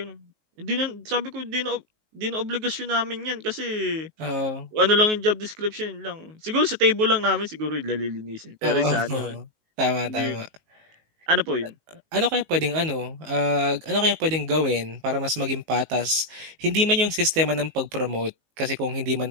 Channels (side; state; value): left; late; 19 ms